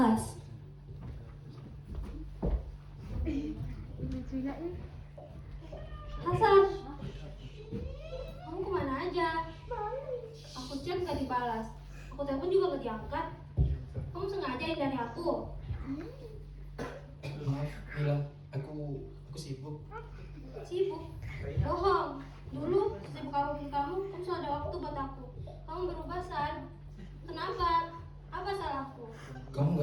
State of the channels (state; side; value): identical; both; correlation 1.00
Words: Hasan, kamu kemana aja? Aku chat nggak dibalas, aku telepon juga nggak diangkat. Kamu sengaja hindari aku? Maaf, Mila. Aku sibuk. Sibuk? Bohong. Dulu sibuk apapun kamu selalu ada waktu buat aku. Kamu berubah, San. Kenapa? Apa salahku? Kamu